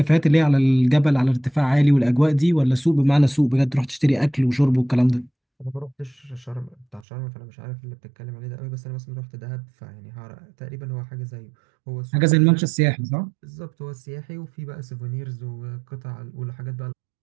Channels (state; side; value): drops out; left; at 7.1 s